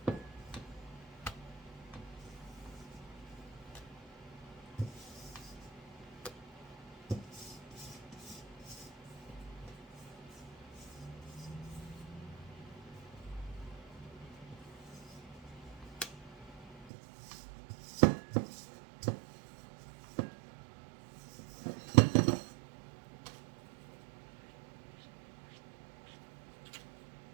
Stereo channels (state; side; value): drops out; left; at 16.9 s